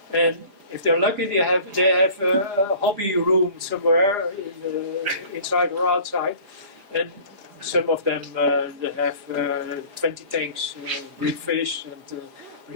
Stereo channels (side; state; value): left; late; 4.9 ms